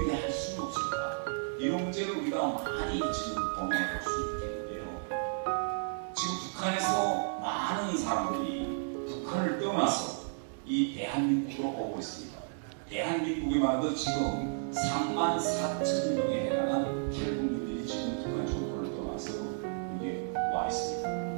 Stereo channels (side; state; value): left; silent; digital silence